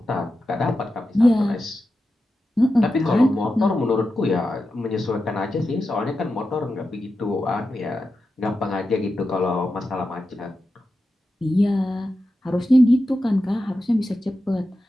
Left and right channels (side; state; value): both; normal; correlation 0.90